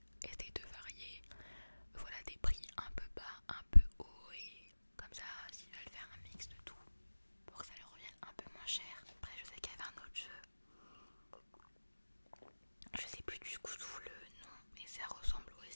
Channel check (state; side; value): inverted; both; correlation -1.00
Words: essayer de varier, voilà, des prix un peu bas, un peu haut, et comme ça s'ils veulent faire un mix de tout pour que ça leur revienne un peu moins cher. Après je sais qu'il y avait un autre jeu, je sais plus du coup le nom, mais ça ressemble